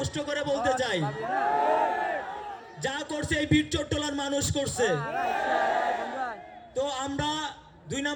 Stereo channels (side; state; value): both; identical; correlation 1.00